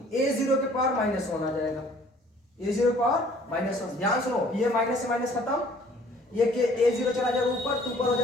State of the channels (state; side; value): normal; both; correlation 0.56